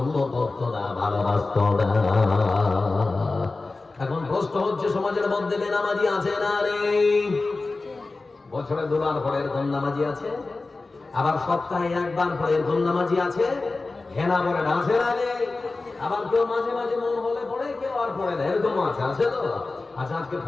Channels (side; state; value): right; quieter; 3.5 dB